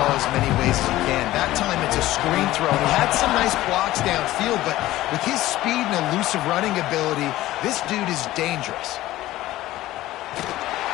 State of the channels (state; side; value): quieter; right; 15.9 dB